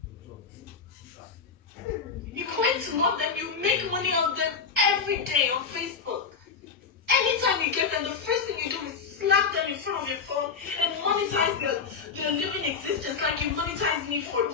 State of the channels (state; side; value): quieter; right; 5.6 dB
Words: You claim to love them, you make money off them every day on Facebook. Anytime you get them, the first thing you do is slap them in front of your phone and monetize their living existence like you monetized me for